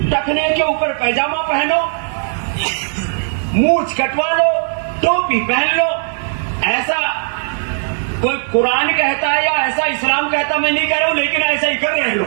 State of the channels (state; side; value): silent; left; 60 dB below the other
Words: टखने के ऊपर पैजामा पहनो, मूंछ कटवा लो, टोपी पहन लो। ऐसा कोई कुरान कहता है या ऐसा इस्लाम कहता, मैं नहीं कह रहा हूं, लेकिन ऐसा ही कर रहे